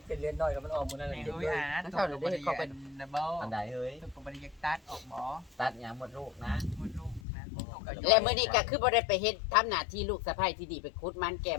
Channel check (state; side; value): drops out; right; at 7.2 s